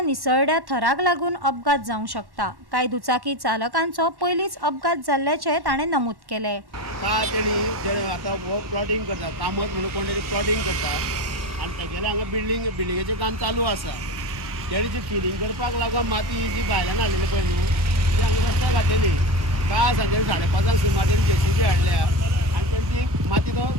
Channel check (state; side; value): late; left; 1.1 ms